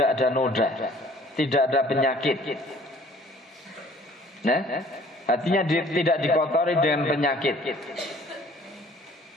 ada noda, tidak ada penyakit. Nah, hatinya tidak dikotori dengan penyakit.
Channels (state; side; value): normal; both; correlation 0.54